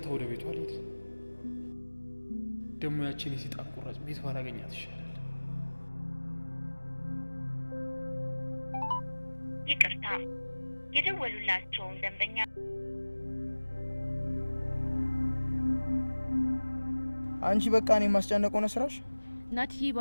ወደ ቤቷ ልሄድ። ደግሞ ያችን የሰይጣን ቁራጭ ቤት ባላገኛት ይሻላል። ይቅርታ የደወሉላችሁን ደንበኛ አንቺ በቃ እኔ ማስጨነቀው ነው ስራሽ። ናትዬ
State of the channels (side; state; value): both; inverted; correlation -1.00